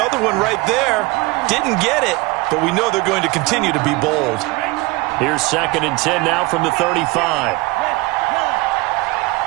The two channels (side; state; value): left; quieter; 22.5 dB